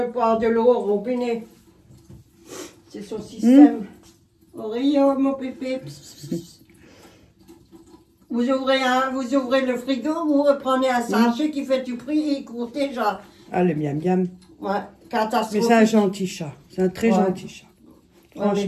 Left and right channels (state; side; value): identical; both; correlation 1.00